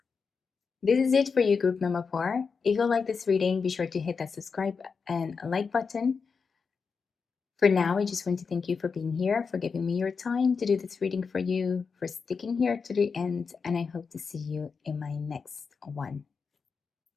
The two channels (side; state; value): right; quieter; 5.4 dB